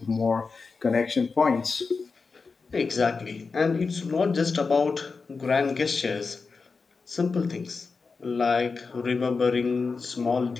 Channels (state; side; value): quieter; right; 4.6 dB